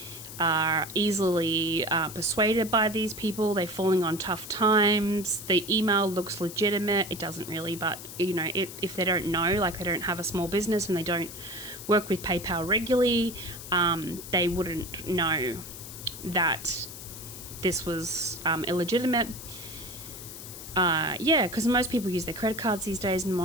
are easily persuaded by these people. They're falling on tough times. The email looks legitimate. It doesn't really, but if they don't know, like they don't have a small business and they don't work with PayPal regularly, they wouldn't know that this was illegitimate. Because most people use their credit cards these days, and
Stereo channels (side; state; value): left; noise; hiss, 12 dB below the sound